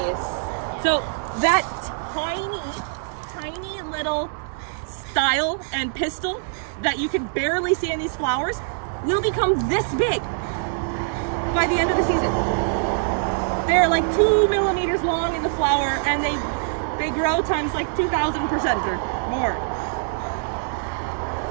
So that tiny little style and pistil that you can barely see in these flowers will become this big by the end of the season. They're like 2 millimeters long in the flower, and they grow times like 2,000% or more.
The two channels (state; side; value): silent; left; 63 dB below the other